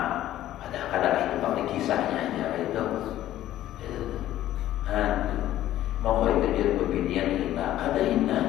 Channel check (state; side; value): quieter; right; 13.4 dB